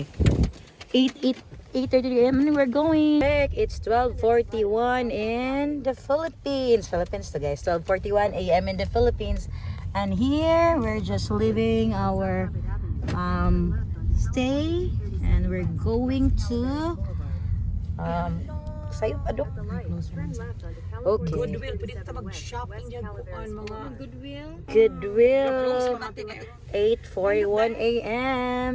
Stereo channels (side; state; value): both; identical; correlation 1.00